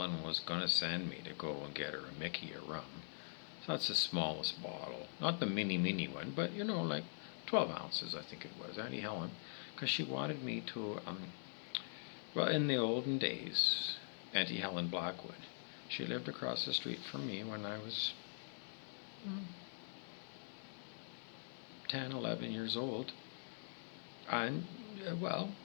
was going to send me to go and get her a Mickey of rum. So that's the smallest bottle. Not the mini one, but, like 12 ounces, I think it was. Aunty Helen, because she wanted me to, well, in the olden days, Aunty Helen Blackwood, she lived across the street from me when I was 10, 11 years old. And, well,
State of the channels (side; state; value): right; silent; digital silence